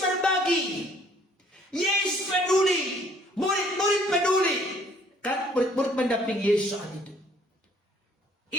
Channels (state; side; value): normal; both; correlation 0.60